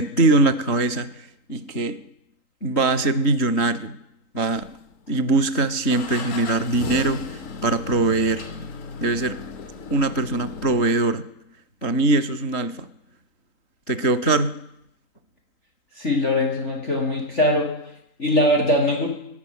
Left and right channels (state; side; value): late; right; 3.8 ms